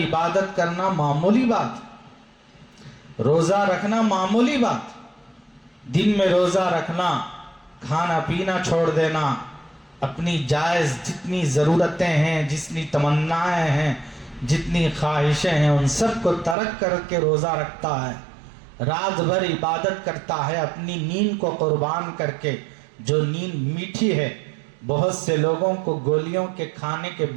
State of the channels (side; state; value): left; drops out; at 16.6 s